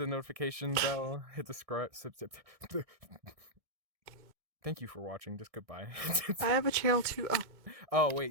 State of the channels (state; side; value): late; left; 1.6 ms